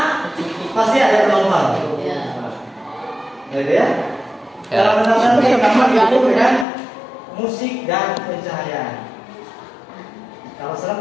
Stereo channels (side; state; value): right; drops out; at 6.7 s